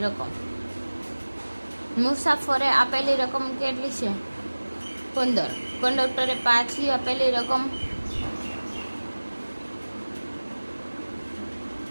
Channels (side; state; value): both; inverted; correlation -1.00